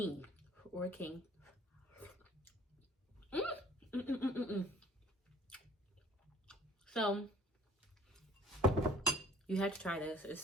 or a king. So you have to try this. It's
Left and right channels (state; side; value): normal; both; correlation 0.54